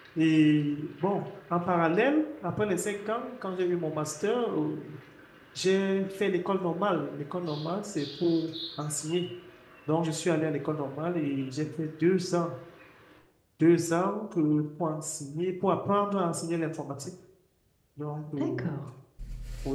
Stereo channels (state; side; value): identical; both; correlation 1.00